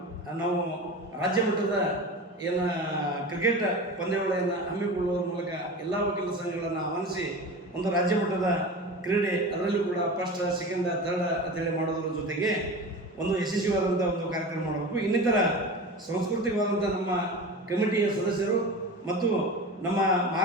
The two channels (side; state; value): both; normal; correlation 0.31